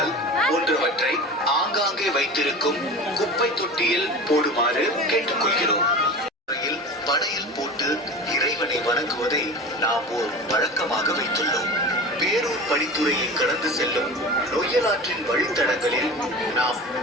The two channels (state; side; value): normal; both; correlation 0.33